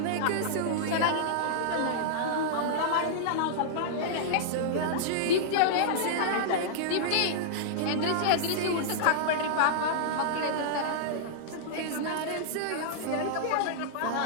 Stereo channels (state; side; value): different; both; correlation -0.02